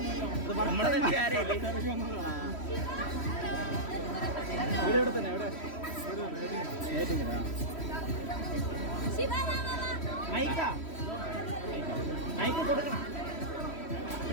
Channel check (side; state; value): right; late; 3.1 ms